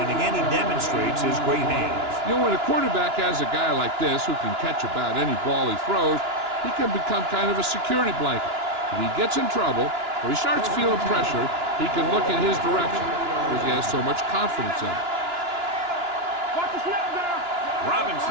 And again, he demonstrates his great hands. You know, when a quarterback has a guy like this who can catch about any ball he throws, he can become kind of a security blanket. If he gets in trouble or he starts feeling pressure, he can look in his direction because he has so much confidence in it.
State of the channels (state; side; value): late; left; 2.9 ms